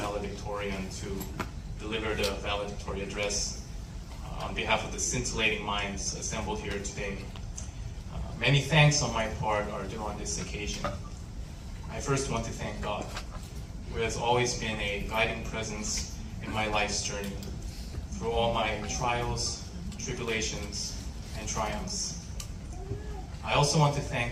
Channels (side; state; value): both; identical; correlation 1.00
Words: to deliver the valedictorian address on behalf of the scintillating minds assembled here today. Many thanks on my part are due on this occasion. I first want to thank God, who has always been a guiding presence in my life's journey, through all my trials, tribulations, and triumphs. I also want to thank